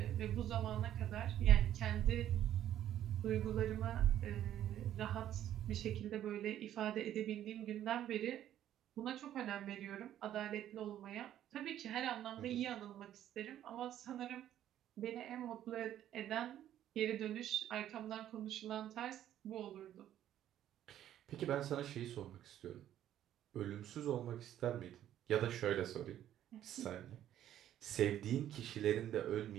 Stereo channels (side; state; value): left; quieter; 11.6 dB